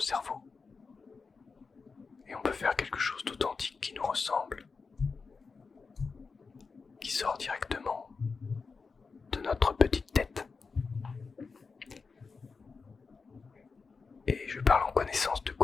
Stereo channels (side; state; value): right; quieter; 4.8 dB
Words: Et on peut faire quelque chose d'authentique qui nous ressemble, qui sort directement de notre petite tête. Et je parle en connaissance de